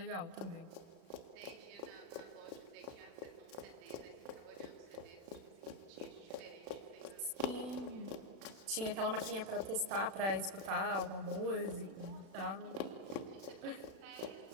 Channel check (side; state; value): left; late; 36 ms